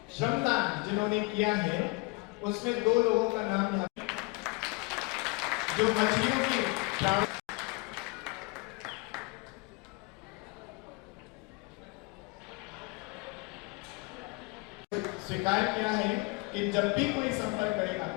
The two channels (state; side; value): quieter; right; 27.6 dB